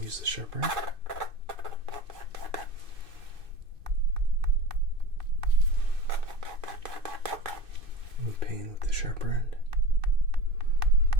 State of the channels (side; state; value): left; late; 2.6 ms